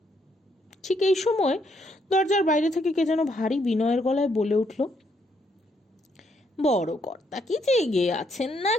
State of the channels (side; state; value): both; normal; correlation 0.73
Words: ঠিক এই সময় দরজার বাইরে থেকে কে যেন ভারী বিনয়ের গলায় বলে উঠল, বড় কর্তা কি জেগে আছেন